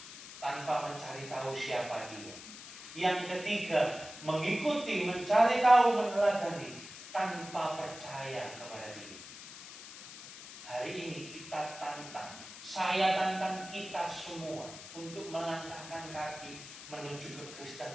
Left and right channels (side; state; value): left; noise; hiss, 14 dB below the sound